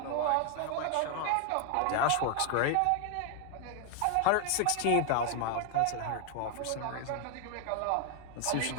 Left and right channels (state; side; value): different; both; correlation 0.01